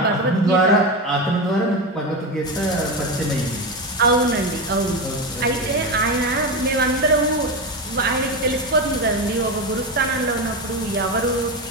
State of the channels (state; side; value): normal; both; correlation 0.17